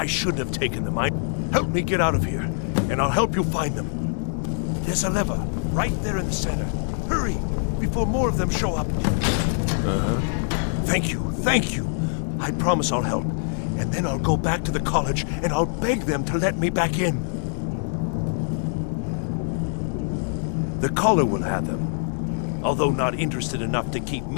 shouldn't have taken them. Help me get out of here, and I'll help you find them. There's a lever right there in the center. Hurry, before more of them show up. Uh-huh. Thank you, thank you. I promise I'll help. And then I'll go back to the college, and I'll beg them to let me back in. The caller will have them, although not interested enough to keep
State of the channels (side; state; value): right; silent; 62 dB below the other